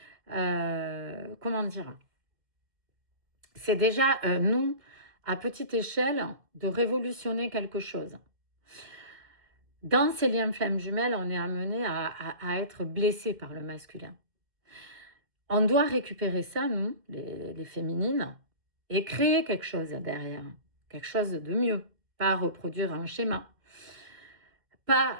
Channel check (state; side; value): late; left; 2.2 ms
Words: comment dire, c'est déjà, nous, à petite échelle, de révolutionner quelque chose. Dans ces liens flammes jumelles, on est amené à être blessé par le masculin. On doit récupérer ça, nous, les féminines, et créer quelque chose derrière, quelque chose de mieux, pas reproduire un schéma. Pas